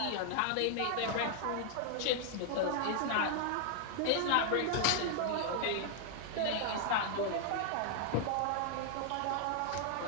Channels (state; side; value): different; both; correlation 0.00